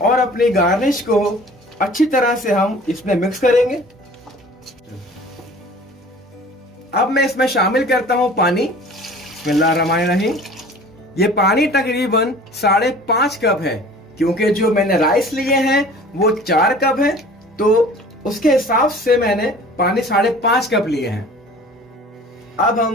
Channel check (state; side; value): normal; both; correlation 0.46